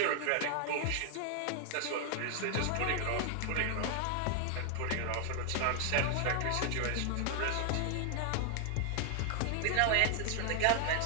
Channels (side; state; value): both; different; correlation 0.00